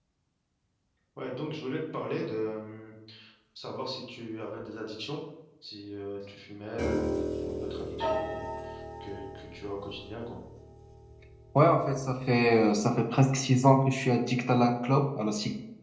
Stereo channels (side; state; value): both; identical; correlation 1.00